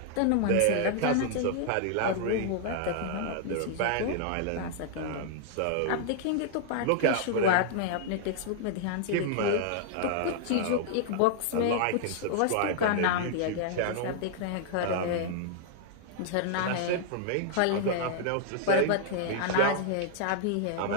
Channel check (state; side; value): different; both; correlation -0.01